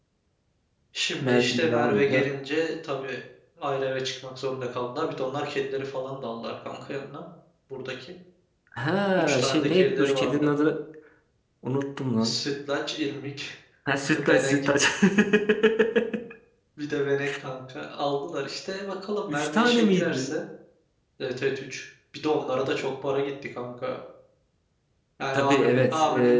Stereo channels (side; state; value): both; identical; correlation 1.00